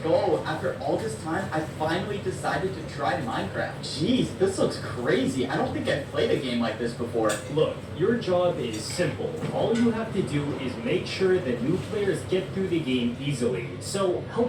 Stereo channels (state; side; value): identical; both; correlation 1.00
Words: go! After all this time, I finally decided to try Minecraft. Jeez, this looks crazy. I don't think I've played a game like this before. Look, your job is simple. All you have to do is make sure that new players get through the game easily. So